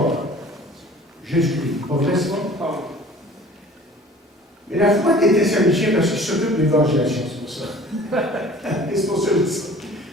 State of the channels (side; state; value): both; normal; correlation 0.47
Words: Jésus-Christ. Pas vrai, ça? Mais la foi des Thessaloniciens, parce qu'ils s'occupent de l'évangélisation, c'est pour ça. C'est pour ça que je dis ça.